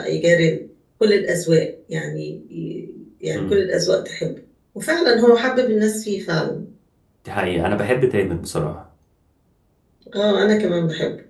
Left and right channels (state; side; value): identical; both; correlation 1.00